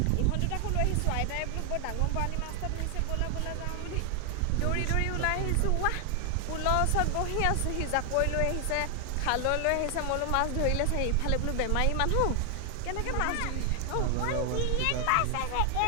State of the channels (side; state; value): both; different; correlation 0.00